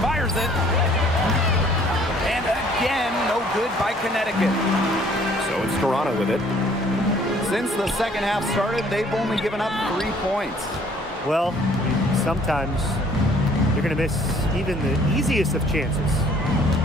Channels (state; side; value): normal; both; correlation 0.58